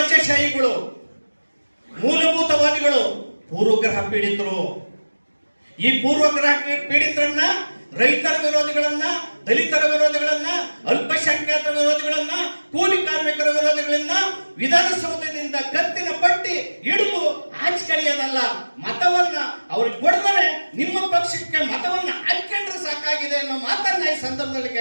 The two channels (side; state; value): both; inverted; correlation -1.00